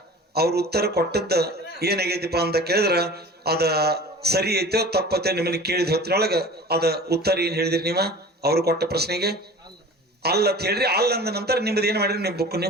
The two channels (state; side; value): normal; both; correlation 0.40